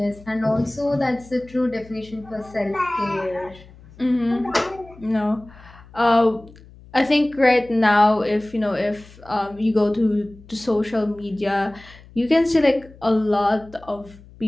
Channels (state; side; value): noise; left; hum, 22 dB below the sound